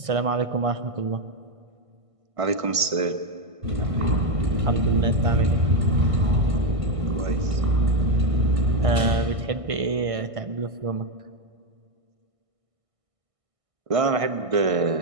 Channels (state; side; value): late; left; 1.6 ms